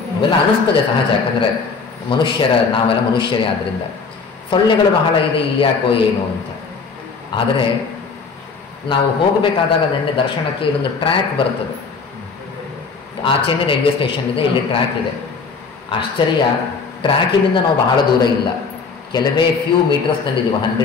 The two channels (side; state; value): right; quieter; 4.9 dB